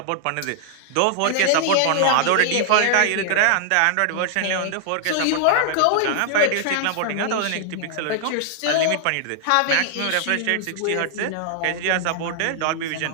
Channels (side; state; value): both; different; correlation 0.00